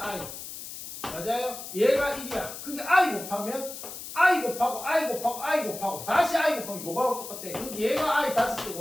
맞아요? 얘가 1이야. 그러니까 I 곱하면 I 곱하고 I 곱하고 I 곱하고 다시 I 곱하면 요거하고 똑같아. 그러니까 얘가 I 5제곱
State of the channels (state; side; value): noise; left; hiss, 10 dB below the sound